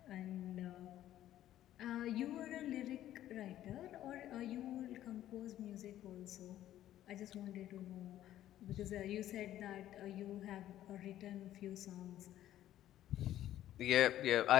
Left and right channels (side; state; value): right; quieter; 12.7 dB